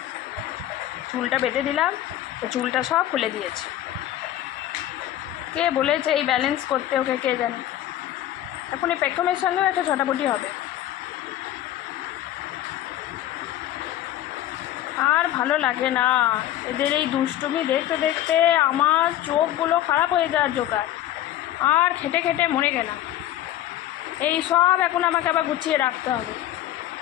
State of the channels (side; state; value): right; quieter; 13.0 dB